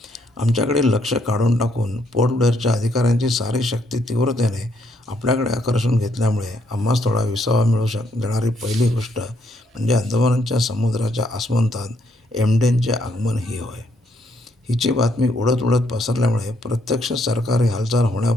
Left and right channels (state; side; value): normal; both; correlation 0.72